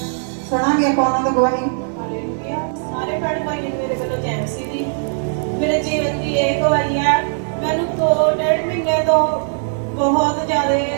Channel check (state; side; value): silent; left; digital silence